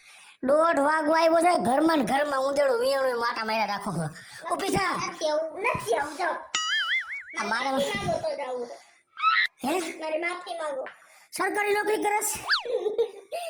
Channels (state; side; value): identical; both; correlation 1.00